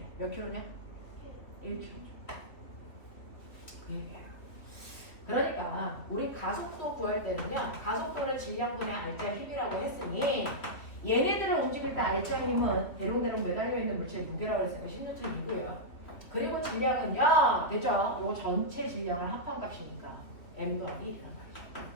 몇 킬로냐? 1kg죠. 그 얘기야. 그러니까 우리 가속도 구할 때는요. 가속도를 질량분의 알짜 힘이라고 했으니 얘네들을 움직일 때 알짜 힘은 대롱대롱 매달려 있는 물체의 무게라고 했으니까 10N이고요. 그리고 질량은요. 됐죠? 요 전체 질량을 합한 값이니까 M 더하기 1이란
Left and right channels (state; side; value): late; right; 3.2 ms